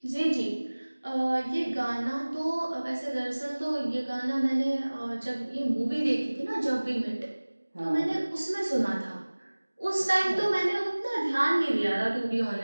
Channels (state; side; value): inverted; both; correlation -1.00